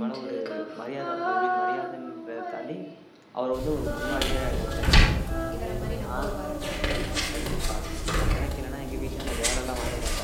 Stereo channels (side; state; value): both; identical; correlation 1.00